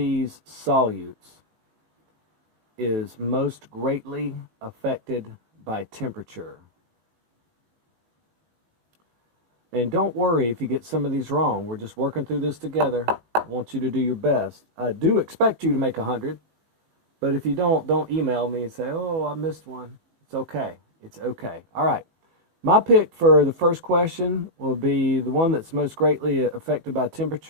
solutes is most greatly affected by temperature? And don't worry if you get some of these wrong. We're just working through this together. I want you to do your best. I do expect you to make 100. But if you don't email me and say, oh, I missed one. It's okay. It's okay. All right. My pick for the first question will be the one that's most greatly affected by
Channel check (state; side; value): late; left; 18 ms